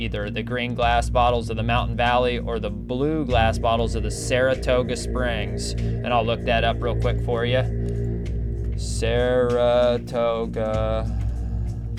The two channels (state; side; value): identical; both; correlation 1.00